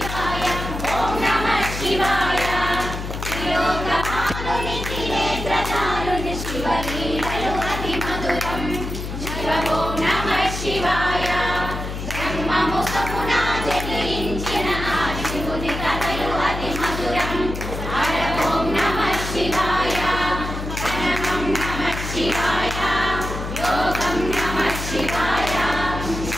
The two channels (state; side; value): noise; left; hum, 6 dB below the sound